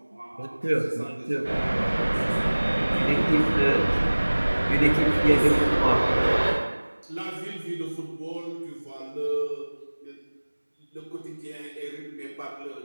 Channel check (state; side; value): inverted; both; correlation -1.00